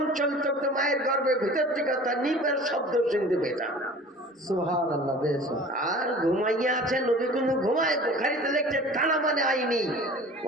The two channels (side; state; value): both; normal; correlation 0.43